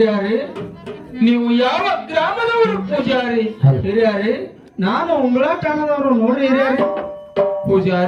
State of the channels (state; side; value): identical; both; correlation 1.00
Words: ನೀವು ಯಾವ ಗ್ರಾಮದವರು ಪೂಜಾರಿ? ಹಿರಿಯಾರಿ, ನಾನು ಉಂಬಳ ಠಾಣದವರು ನೋಡ್ರಿ ಹಿರಿಯಾರಿ.